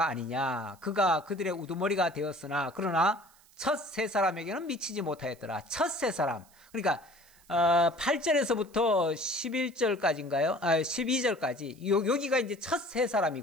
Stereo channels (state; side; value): noise; right; hiss, 28 dB below the sound